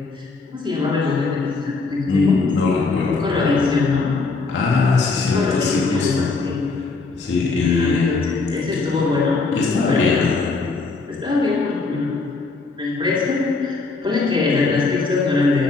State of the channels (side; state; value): right; quieter; 4.0 dB